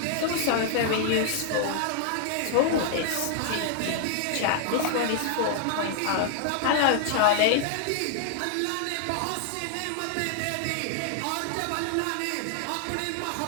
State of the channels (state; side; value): different; both; correlation 0.00